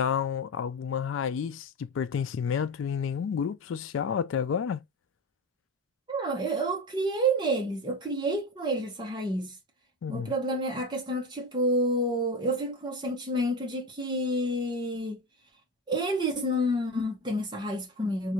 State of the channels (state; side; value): normal; both; correlation 0.22